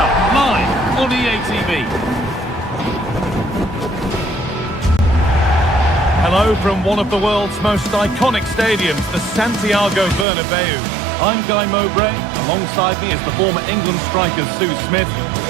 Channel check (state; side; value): drops out; left; at 10.2 s